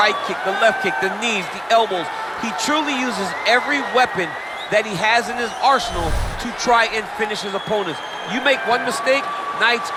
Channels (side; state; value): both; identical; correlation 1.00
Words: kick, the left kick, the knees, the elbows. He truly uses every weapon that he has in his arsenal to try and finish his opponents. You make one mistake, night's